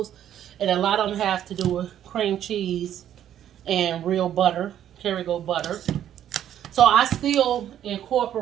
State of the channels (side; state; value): left; quieter; 10.7 dB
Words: and a lot of them have to do with cream cheese and real butter, Kerrygold butter. So I still